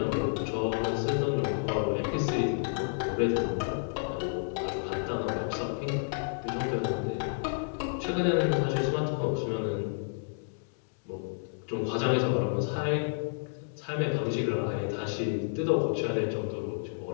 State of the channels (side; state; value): right; silent; digital silence